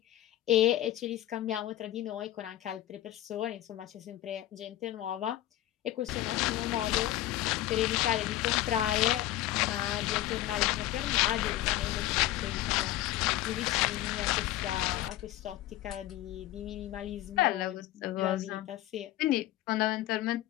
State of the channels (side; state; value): right; quieter; 14.6 dB